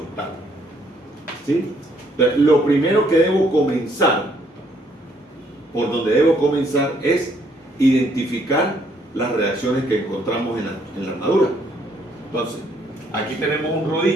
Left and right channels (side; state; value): both; normal; correlation 0.68